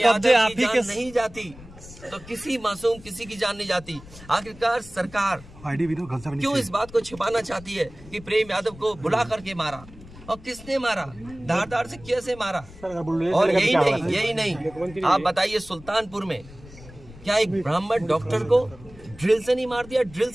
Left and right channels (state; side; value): noise; left; rumble, 19 dB below the sound